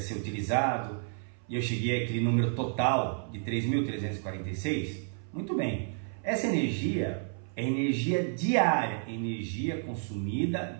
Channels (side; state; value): left; silent; 57 dB below the other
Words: utilizado, e eu cheguei àquele número total de 3.346. Muito bem, essa energia é energia diária, energia